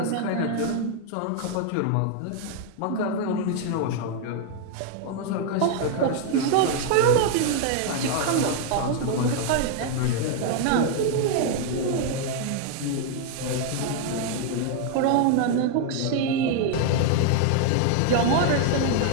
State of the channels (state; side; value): different; both; correlation 0.00